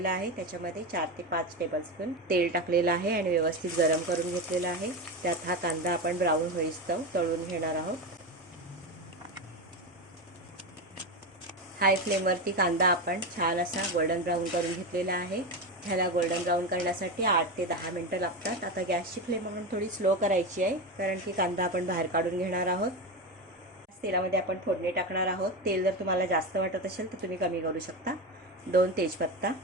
आहे, त्याच्यामध्ये 4 ते 5 टेबलस्पून तेल टाकलेलं आहे आणि व्यवस्थित गरम करून घेतलेलं आहे। त्यात हा कांदा आपण ब्राऊन होईस्तोवर तळून घेणार आहोत। हाय फ्लेमवरती कांदा आपण छान असा गोल्डन ब्राऊन करून घेतलेला आहे। ह्याला गोल्डन ब्राऊन करण्यासाठी 8 ते 10 मिनिटं लागतात। आता गॅसची फ्लेम आपण थोडी स्लो करायची आहे, कारण की कांदा आपण बाहेर काढून घेणार आहोत। तेलामध्ये आपण फोडणी टाकणार आहोत। तेल जर तुम्हाला जास्त वाटत असेल तर तुम्ही कमी करू शकता। 2 तेजपत्ता,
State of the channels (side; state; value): both; normal; correlation 0.18